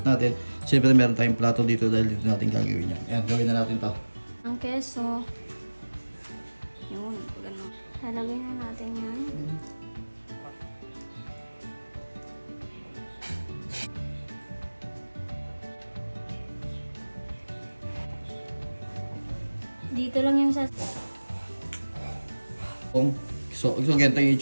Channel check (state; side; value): inverted; both; correlation -1.00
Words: natin, siyempre meron tayong plato dito dahil dito natin gagawin yan. Yan, gawin na natin to. Ang keso. Yun, gano'n. Lalagay na natin yan. Dito lang yung sa... So ganito